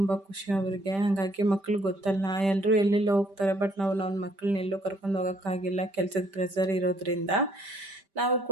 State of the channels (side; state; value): left; late; 5.1 ms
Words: ಖುಷಿ ಅವ್ರಿಗೆ. ಹಾಗಾಗಿ ಮಕ್ಳಿಗೆ ಗೊತ್ತಲ್ಲ, ಎಲ್ಲರೂ ಎಲ್ಲೆಲ್ಲೋ ಹೋಗ್ತಾರೆ, ಬಟ್ ನಾವು ನನ್ನ ಮಕ್ಕಳನ್ನ ಎಲ್ಲೂ ಕರ್ಕೊಂಡು ಹೋಗೋಕ್ಕಾಗಿಲ್ಲ, ಕೆಲಸದ ಪ್ರೆಸರ್ ಇರೋದ್ರಿಂದ. ನಾವು